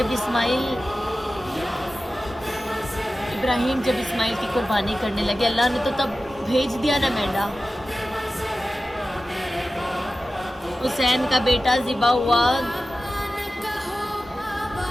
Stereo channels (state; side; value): normal; both; correlation 0.94